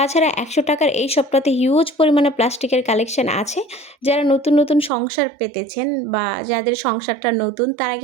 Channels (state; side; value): drops out; left; at 4.9 s